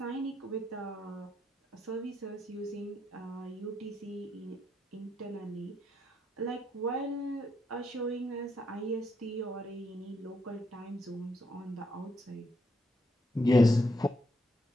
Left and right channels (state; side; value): normal; both; correlation 0.77